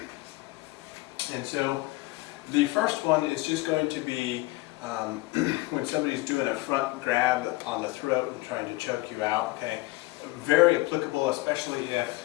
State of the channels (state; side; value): quieter; right; 20.9 dB